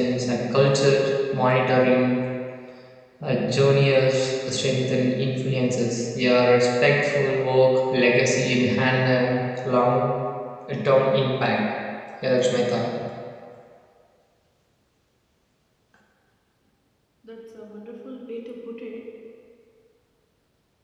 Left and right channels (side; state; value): both; identical; correlation 1.00